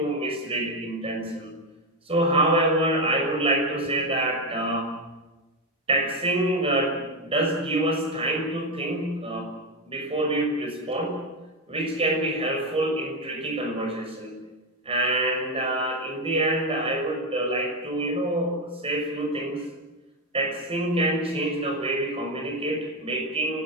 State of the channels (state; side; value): normal; both; correlation 0.10